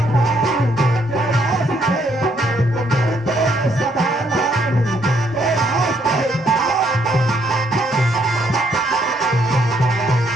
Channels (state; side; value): normal; both; correlation 0.70